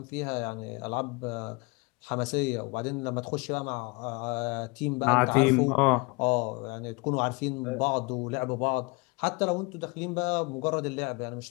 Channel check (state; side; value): quieter; right; 27.8 dB